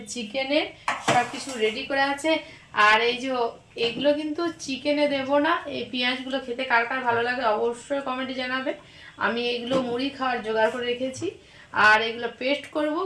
চিকেনের সব কিছু রেডি করে আছে। আর এই যে এগুলো কিন্তু চিকেনে দেব না, এই পেঁয়াজগুলো খেতে কার কার ভালো লাগে অবশ্যই কমেন্টে জানাবে। আমি এগুলো মুড়ি খাওয়ার জোগাড় করে রেখেছি। আর এগুলো পেস্ট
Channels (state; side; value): identical; both; correlation 1.00